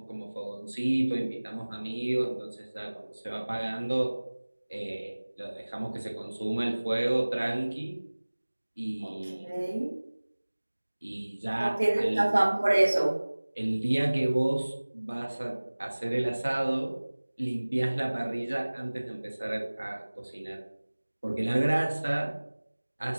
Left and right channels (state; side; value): inverted; both; correlation -1.00